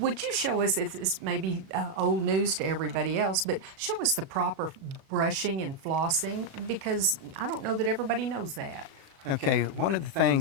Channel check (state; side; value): late; left; 37 ms